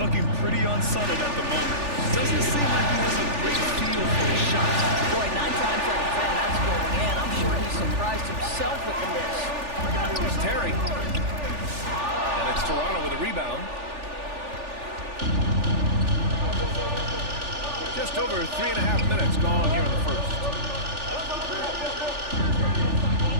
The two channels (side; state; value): left; late; 3.4 ms